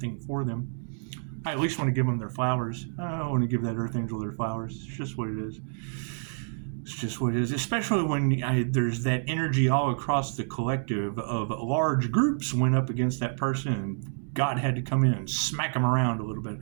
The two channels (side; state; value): left; silent; 59 dB below the other